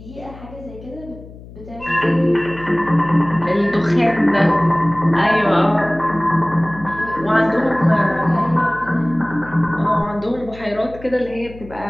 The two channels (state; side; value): noise; left; hum, 18 dB below the sound